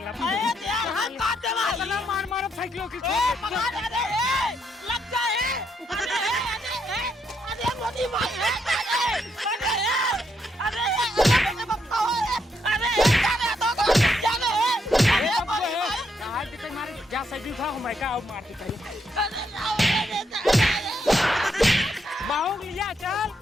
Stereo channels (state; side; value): normal; both; correlation 0.77